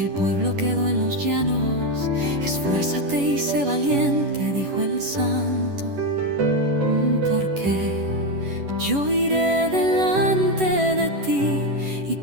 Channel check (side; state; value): left; late; 11 ms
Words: el pueblo quedó en los llanos, esfuérzate y sé valiente, dijo el Santo, porque yo iré delante de ti. Y